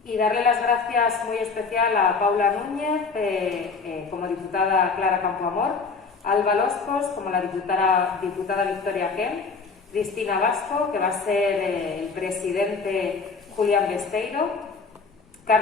y darle las gracias muy especial a Paula Núñez, como diputada Clara Campoamor, a Alba Loscos, como la diputada Victoria Ken, Cristina Vasco, que va a ser el presidente Julián Besteiro,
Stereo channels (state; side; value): quieter; right; 4.8 dB